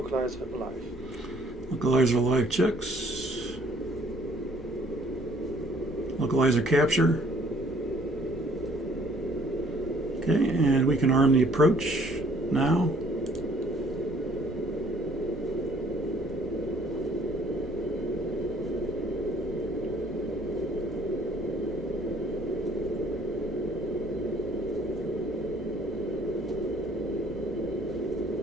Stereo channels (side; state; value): both; normal; correlation 0.60